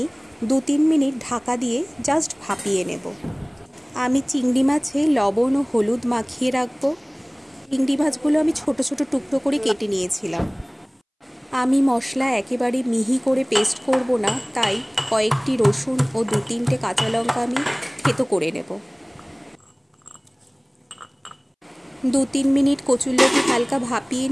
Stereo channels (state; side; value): identical; both; correlation 1.00